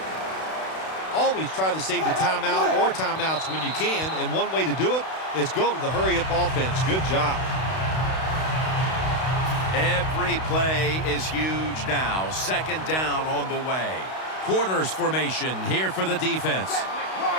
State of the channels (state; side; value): late; right; 32 ms